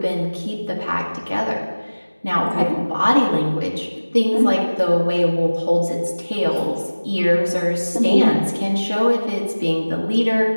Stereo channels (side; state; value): both; inverted; correlation -1.00